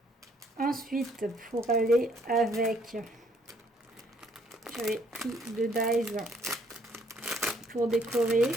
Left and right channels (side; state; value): both; normal; correlation 0.66